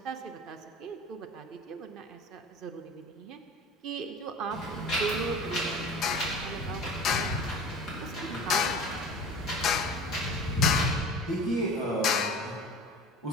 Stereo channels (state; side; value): normal; both; correlation 0.38